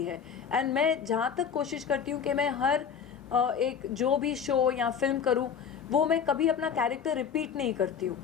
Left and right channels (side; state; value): right; quieter; 7.2 dB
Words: है। एंड मैं जहाँ तक कोशिश करती हूँ कि मैं हर एक जो भी शो या फिल्म करूँ वो मैं कभी अपना कैरेक्टर रिपीट नहीं करती हूँ।